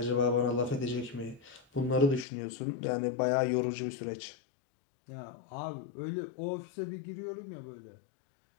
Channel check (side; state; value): right; drops out; at 2.2 s